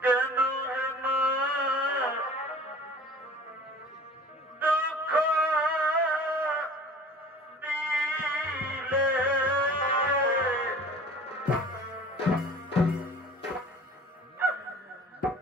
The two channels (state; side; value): normal; both; correlation 0.44